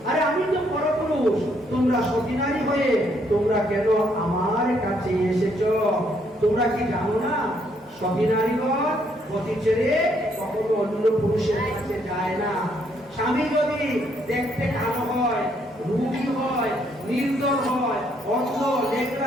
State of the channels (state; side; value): normal; both; correlation 0.71